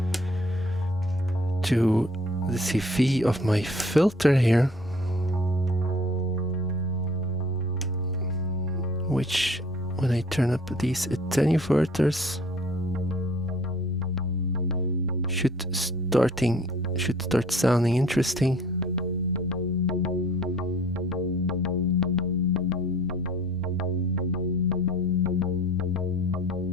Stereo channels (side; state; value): both; normal; correlation 0.53